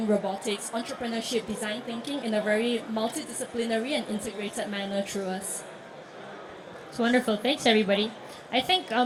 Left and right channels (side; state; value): both; identical; correlation 1.00